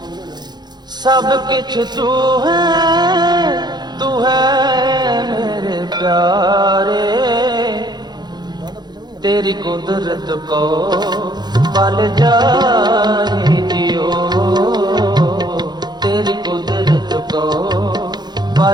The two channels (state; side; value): late; left; 0.20 ms